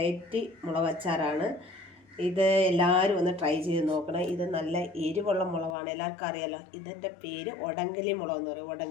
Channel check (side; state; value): right; drops out; at 5.8 s